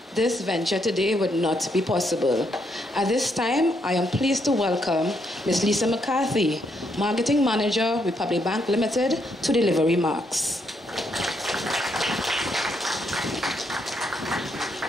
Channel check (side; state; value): both; normal; correlation 0.76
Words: this venture today would not be possible. At this time, I am pleased to welcome Ms. Lisa McCarthy, Marketing Manager, Republic Bank Limited, to deliver remarks.